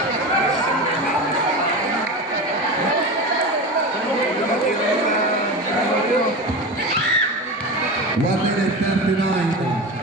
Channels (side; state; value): both; normal; correlation 0.26